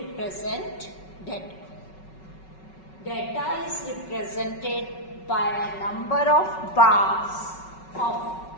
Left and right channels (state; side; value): late; right; 5.3 ms